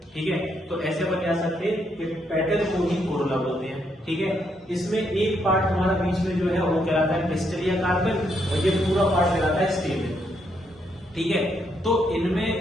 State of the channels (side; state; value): both; normal; correlation 0.76